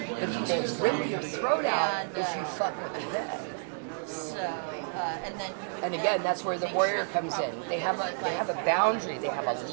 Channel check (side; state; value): left; silent; digital silence